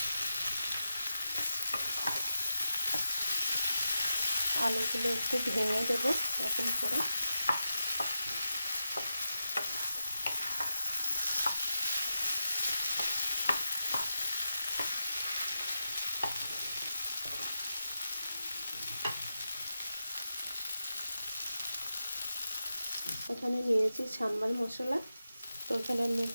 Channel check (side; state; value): both; inverted; correlation -0.90